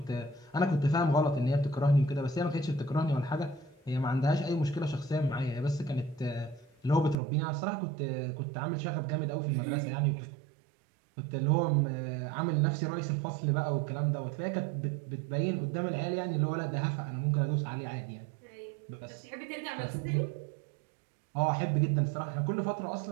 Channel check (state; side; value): drops out; left; at 7.2 s